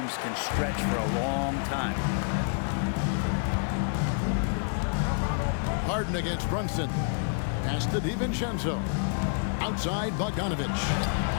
can stretch for a long time. Harden against Brunson. Pass to DiVincenzo. Outside Bogdanovich.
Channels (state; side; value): silent; right; digital silence